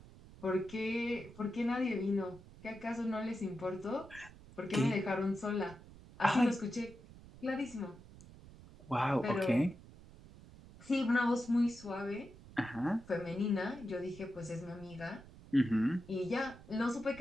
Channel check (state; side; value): noise; right; rumble, 19 dB below the sound